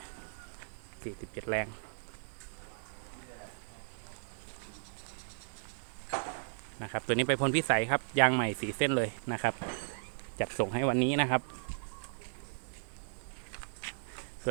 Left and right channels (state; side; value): silent; left; 54 dB below the other